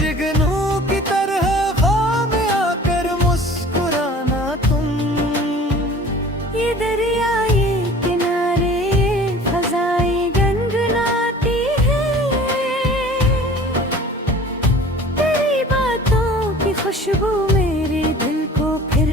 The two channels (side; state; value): both; normal; correlation 0.45